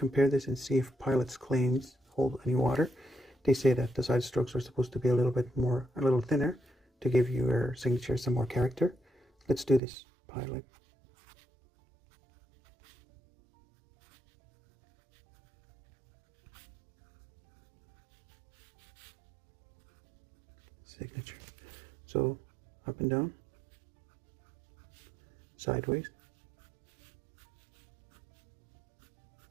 this and see if Pilot's claims hold any water. They say that the side strokes are supposed to be a little thinner to give your signature some more character. Let's do this. Pilot. Signature. So up and down, sideways,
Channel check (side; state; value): left; drops out; at 9.8 s